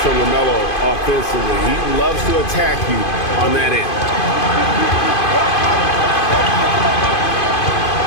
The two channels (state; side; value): late; right; 2.5 ms